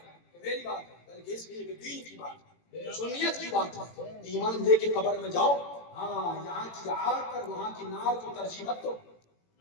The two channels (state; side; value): late; right; 18 ms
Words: میری بات ہے بلکہ اس لیے کہ دین کی بات ہے سنیت کی بات ہے ایمان لے کے قبر میں جاؤ ہاں یہاں کی آگ پر وہاں کی نار کو ترجیح مت دو